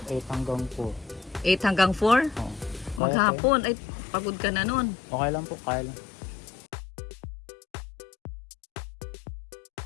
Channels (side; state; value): right; drops out; at 3.0 s